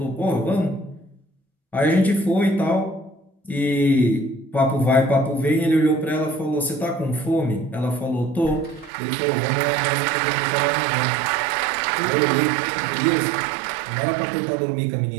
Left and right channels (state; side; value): drops out; left; at 8.9 s